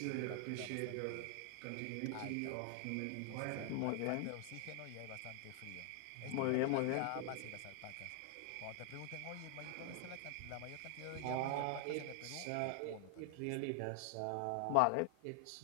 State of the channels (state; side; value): different; both; correlation 0.00